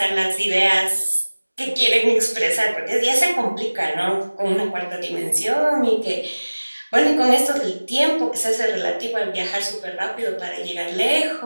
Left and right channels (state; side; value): inverted; both; correlation -1.00